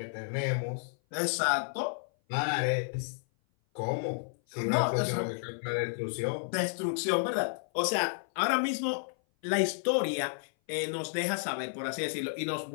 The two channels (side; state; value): right; silent; 56 dB below the other